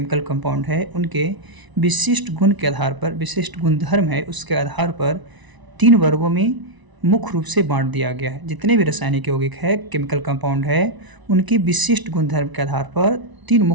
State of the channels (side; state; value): left; late; 1.0 ms